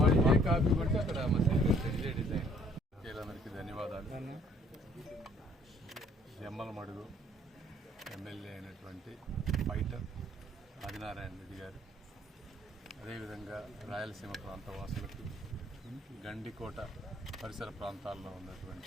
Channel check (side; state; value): both; normal; correlation 0.61